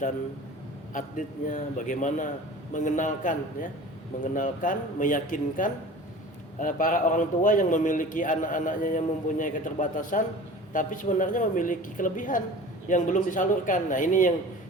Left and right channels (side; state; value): both; normal; correlation 0.40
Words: atletnya, bagaimana mengenalkan, meyakinkan para orang tua yang memiliki anak-anaknya yang mempunyai keterbatasan, tapi sebenarnya memiliki kelebihan yang belum disalurkan. Nah, ini